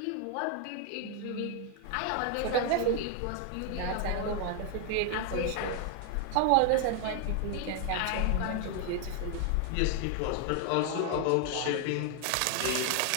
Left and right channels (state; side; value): different; both; correlation 0.00